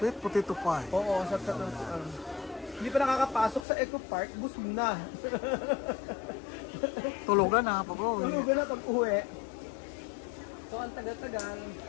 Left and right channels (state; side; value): drops out; right; at 3.6 s